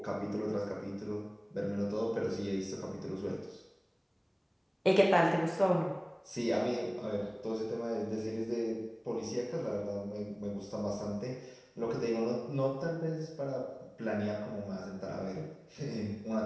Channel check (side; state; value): both; identical; correlation 1.00